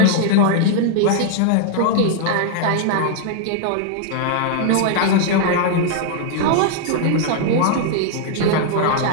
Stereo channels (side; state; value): both; different; correlation 0.00